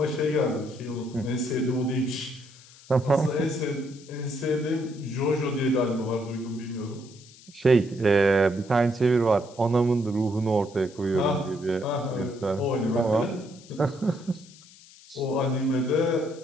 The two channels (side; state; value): left; noise; hiss, 23 dB below the sound